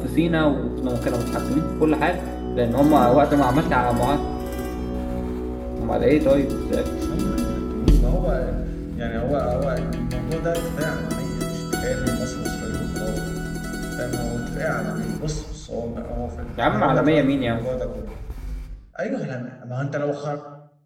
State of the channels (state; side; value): identical; both; correlation 1.00